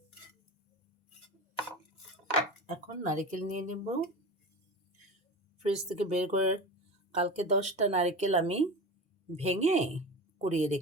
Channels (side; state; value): both; normal; correlation 0.29